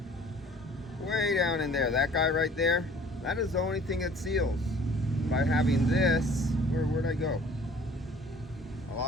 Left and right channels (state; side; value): normal; both; correlation 0.51